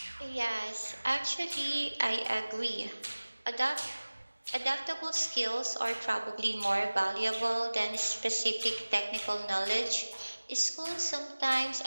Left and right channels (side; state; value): both; inverted; correlation -1.00